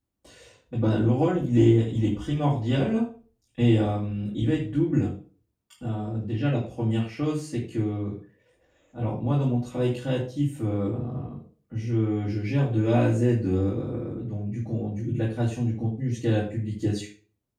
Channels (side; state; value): both; identical; correlation 1.00